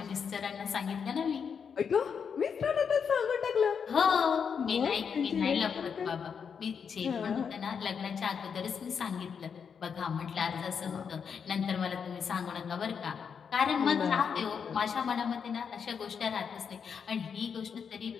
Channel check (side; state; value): right; quieter; 6.7 dB